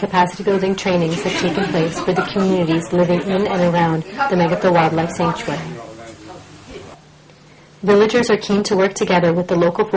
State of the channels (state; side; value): identical; both; correlation 1.00